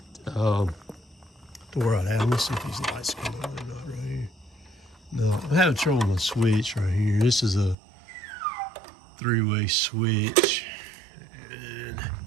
to where I'd have. Let's see if these lights come on or not right here. No, I'm having trouble with my switch right here. This is a 3-way switch. And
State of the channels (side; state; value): left; drops out; at 7.8 s